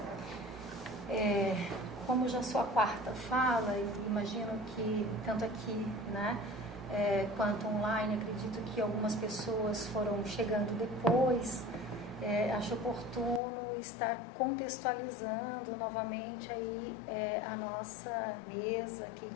Como já sou a quarta fala, eu imagino que tanto aqui, né, quanto online, acredito que algumas pessoas foram chegando depois. Acho oportuno estar contextualizando novamente aí, a nossa mesa aqui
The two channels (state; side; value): drops out; right; at 13.4 s